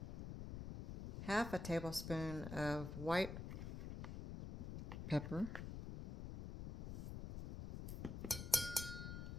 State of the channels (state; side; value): noise; left; rumble, 6 dB below the sound